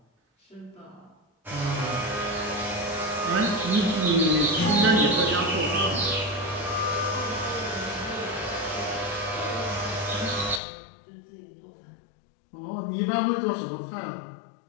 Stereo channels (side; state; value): right; drops out; at 10.6 s